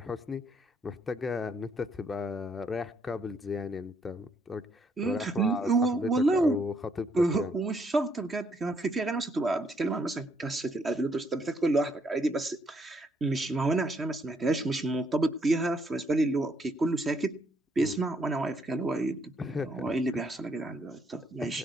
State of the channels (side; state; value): both; normal; correlation 0.71